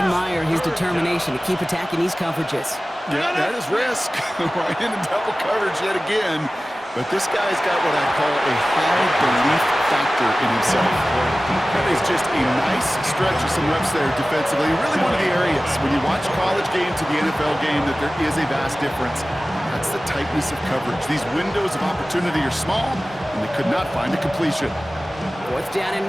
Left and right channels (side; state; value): both; normal; correlation 0.97